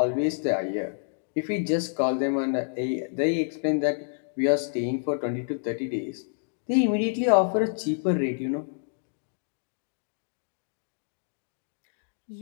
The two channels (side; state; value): right; silent; digital silence